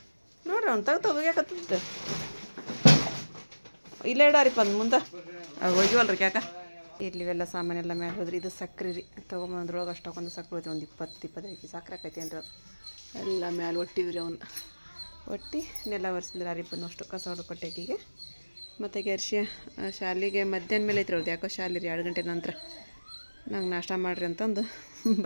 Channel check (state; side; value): inverted; both; correlation -1.00